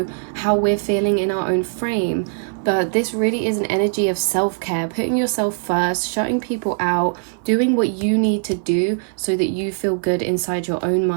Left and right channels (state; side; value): silent; left; 60 dB below the other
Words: how we're feeling in our own frame. But this really is an energy of self-care, putting yourself first, shutting people out, doing what you need to do so that you feel good inside your own